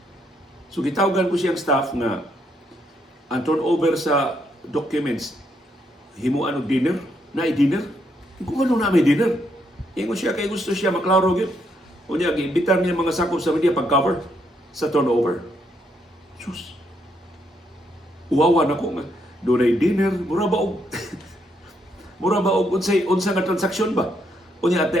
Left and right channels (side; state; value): both; normal; correlation 0.75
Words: So gitawagan ko siyang staff nga ang turnover sa documents himuan og dinner, na dinner. Kung ano na may dinner. Ingon siya kay gusto siya maklaro gyud. Unya giimbitar niya mga sakop sa media pag-cover sa turnover. Sus. Uwawa na ko nga dunay dinner, mura ba og mura ba og unsa nga transaksyon ba? Unya at the